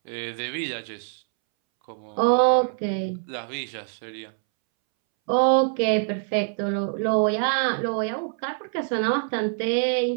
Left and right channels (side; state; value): left; silent; 62 dB below the other